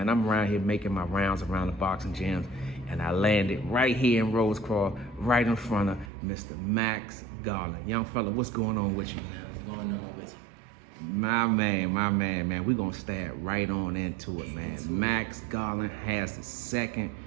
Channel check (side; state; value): left; drops out; at 6.1 s